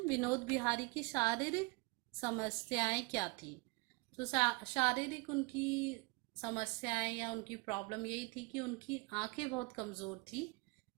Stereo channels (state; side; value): quieter; left; 27.8 dB